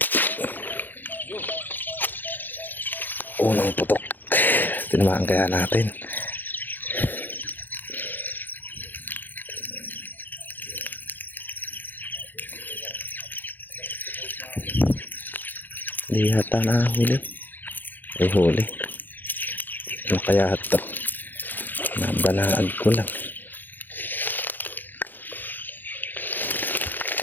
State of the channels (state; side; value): late; right; 0.089 ms